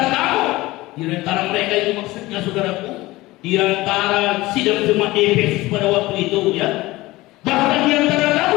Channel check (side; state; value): right; quieter; 19.3 dB